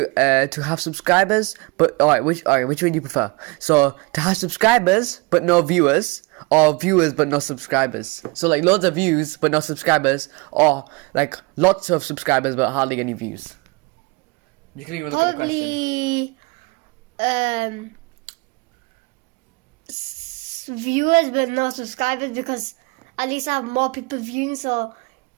have subscribers? But which would you prefer? So to have subscribers but no viewers, or viewers but no subscribers. So loads of views but no subscribers, or lots of subscribers but hardly any views. You can even look at the question. Viewers but no subscribers, because at least I have more people viewing, so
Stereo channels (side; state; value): left; quieter; 27.3 dB